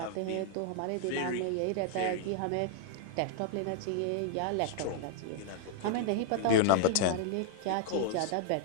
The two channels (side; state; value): both; different; correlation 0.00